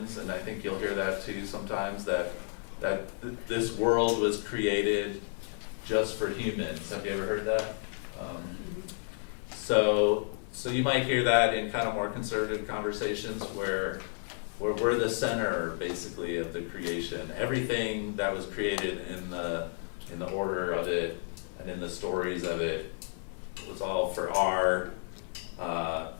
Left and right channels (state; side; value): silent; right; 57 dB below the other